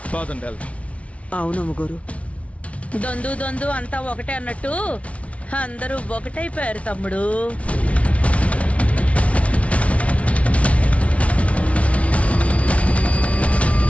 పదండి వెళ్దాం. అవునమ్మగారు. దొందు దొందు అంతా ఒకటే అన్నట్టు అందరూ ఒకటైపోయారు తమ్ముడు.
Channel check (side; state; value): right; late; 0.064 ms